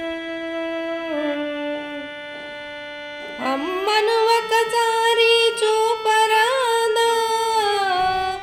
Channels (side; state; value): both; identical; correlation 1.00